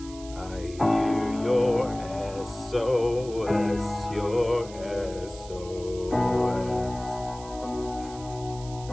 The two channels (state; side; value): noise; right; hiss, 18 dB below the sound